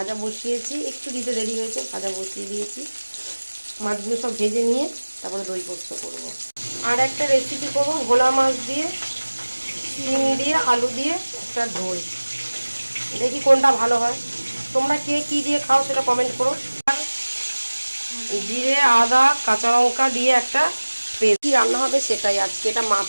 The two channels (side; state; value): both; inverted; correlation -1.00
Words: বসিয়েছি, একটু দিতে দেরি হয়েছে, ভাজা বসিয়ে দিয়েছি। মাছগুলো সব ভেজে নিয়ে তারপরে দই পোস্ত করবো। আর একটা রেসিপি করবো ভোলা মাছ দিয়ে, শিম দিয়ে, আলু দিয়ে একটা ঝোল। দেখি কোনটা ভালো হয়। তোমরা কে কী দিয়ে খাও সেটা কমেন্ট করো। আর জিরে, আদা, কাঁচা লঙ্কা দিয়ে একটা পেস্ট। কী রান্না হবে সেটাই আজকে। এটা